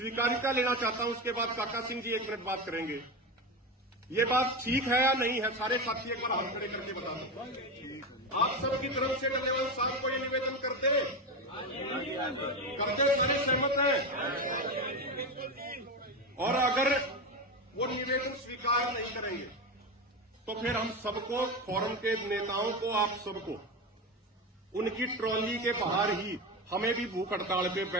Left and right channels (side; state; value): both; normal; correlation 0.18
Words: लेना चाहता हूं। उसके बाद काका सिंह जी 1 मिनट बात करेंगे। ये बात ठीक है या नहीं है? सारे साथी एक बार हाथ खड़े करके बता दो। आप सबकी तरफ से डल्लेवाल साहब को ये निवेदन करते सारे सहमत हैं? और अगर वो निवेदन स्वीकार नहीं करेंगे तो फिर हम सबको, फोरम के नेताओं को, आप सबको उनकी ट्रॉली के बाहर ही हमें भी भूख हड़ताल पे